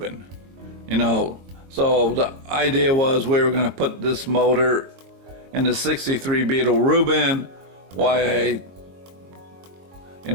So the idea was we were gonna put this motor in the 63 Beetle Reuben while I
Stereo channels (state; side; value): late; left; 22 ms